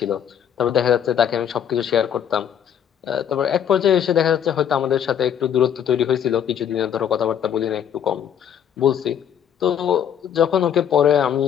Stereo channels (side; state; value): right; quieter; 8.9 dB